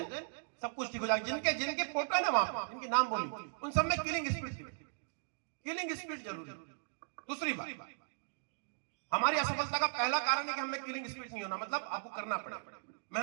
सब कुछ ठीक हो जाएगा। जिनके जिनके फोटो है ना वहां पर, जिनके नाम बोली, उन सब में किलिंग स्पिरिट, किलिंग स्पिरिट जरूरी। दूसरी बात, हमारी असफलता का पहला कारण है कि हमें किलिंग स्पिरिट नहीं होना। मतलब आपको करना पड़ेगा,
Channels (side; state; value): left; silent; digital silence